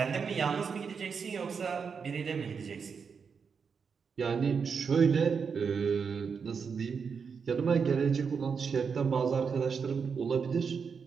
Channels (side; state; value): left; quieter; 6.0 dB